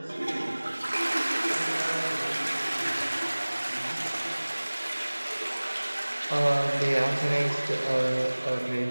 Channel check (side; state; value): both; inverted; correlation -1.00